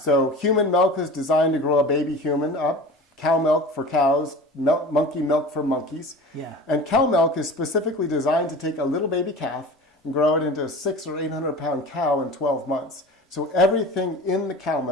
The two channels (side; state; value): both; normal; correlation 0.36